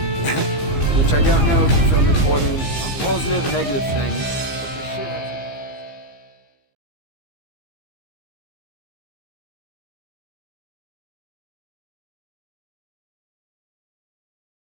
which I don't know if I'm reporting a positive or negative thing,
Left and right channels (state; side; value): late; right; 15 ms